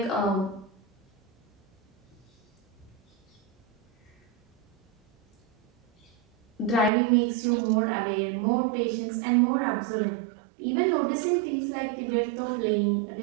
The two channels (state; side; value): drops out; left; at 6.9 s